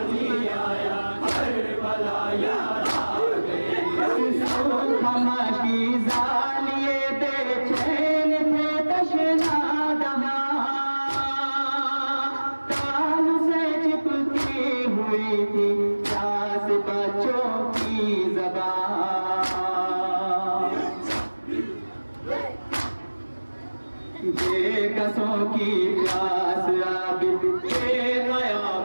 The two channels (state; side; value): inverted; both; correlation -1.00